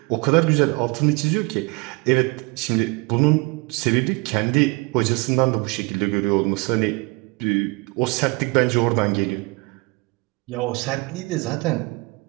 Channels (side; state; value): left; quieter; 27.4 dB